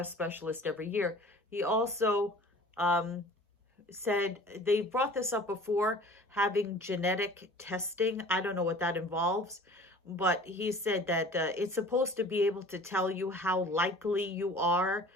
specialist every year. He also said, they brought this up before, having genetic testing. I don't know what that involves, but he said that it's supposed to be able to tell you how likely you are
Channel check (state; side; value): normal; both; correlation 0.45